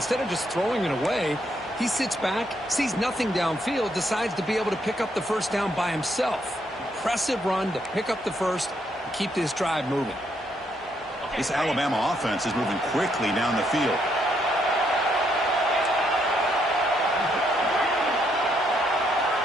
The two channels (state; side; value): normal; both; correlation 0.74